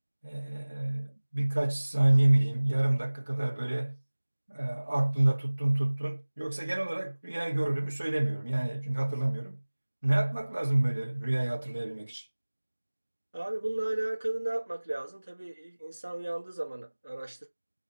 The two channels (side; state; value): both; inverted; correlation -1.00